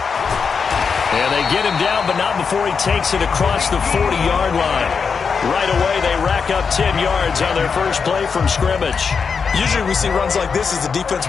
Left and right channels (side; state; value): right; quieter; 5.7 dB